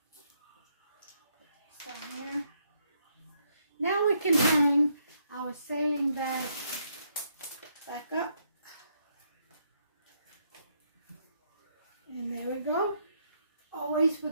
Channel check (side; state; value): both; inverted; correlation -0.75